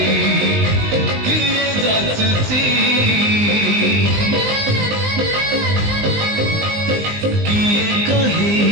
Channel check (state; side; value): late; left; 19 ms